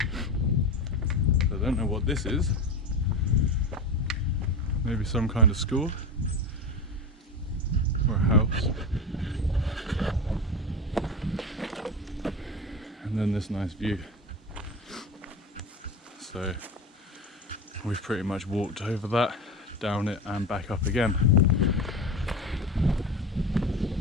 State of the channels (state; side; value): normal; both; correlation 0.24